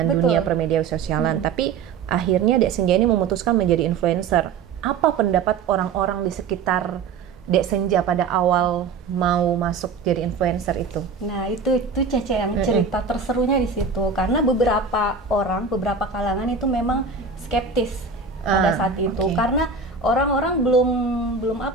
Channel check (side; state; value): left; quieter; 5.2 dB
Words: Betul. dunia permedia sosialan. Tapi akhirnya Dek Senja ini memutuskan menjadi influencer. Apa pendapat orang-orang di sekitar Dek Senja pada awal mau masuk jadi influencer itu? Nah, itu Cece yang cerita terserunya di situ, karena beberapa beberapa kalangan itu memang skeptis pada saat itu, oke. karena orang-orang